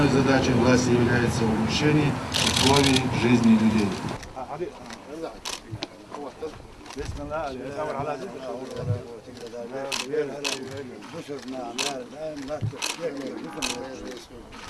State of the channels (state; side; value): identical; both; correlation 1.00